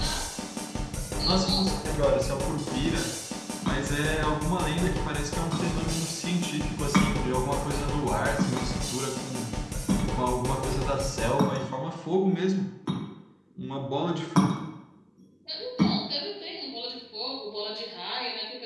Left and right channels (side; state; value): both; identical; correlation 1.00